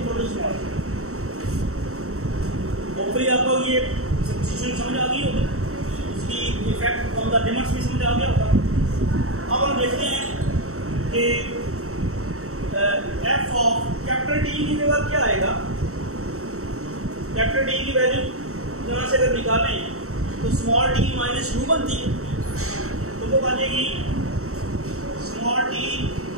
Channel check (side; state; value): left; late; 0.64 ms